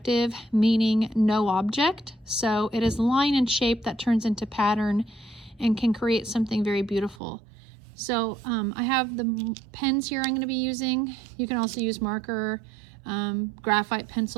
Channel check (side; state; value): left; drops out; at 7.2 s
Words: meaning no object, so it is line and shape that turns into pattern and can create something very beautiful. So I have the pens here I'm going to be using. You can also use marker, graphite